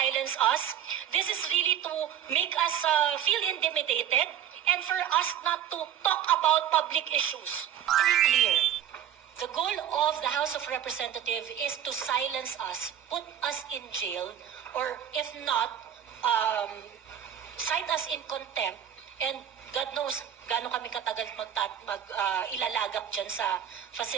us. This is really to make us feel intimidated and for us not to talk about public issues. Very clear. The goal of the House of Representatives is to silence us, put us in jail, or if not, cite us in contempt, and God knows gaano kami katagal ilalagak dyan sa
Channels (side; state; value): left; quieter; 10.0 dB